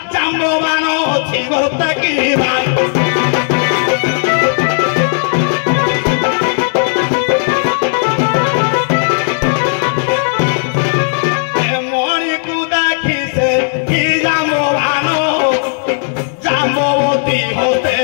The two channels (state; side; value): silent; right; 63 dB below the other